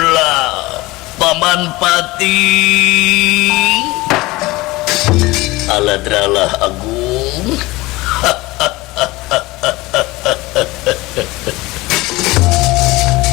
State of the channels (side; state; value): right; quieter; 20.8 dB